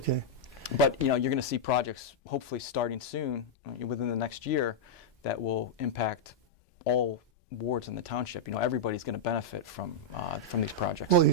But you're going to see projects hopefully starting soon, within the next year, that will impact all wards in the township. Everybody's going to benefit from these projects. Well,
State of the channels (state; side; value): normal; both; correlation -0.05